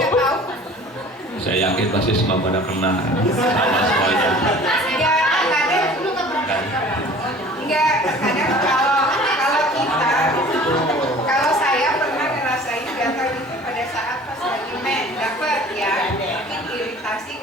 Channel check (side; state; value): both; normal; correlation 0.46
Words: Saya yakin pasti semua pada kena sama semuanya. Nggak ada. enggak, kadang kalau kita, kalau saya pernah ngerasain gatal itu pada saat pas lagi dapat ya, mungkin iritasi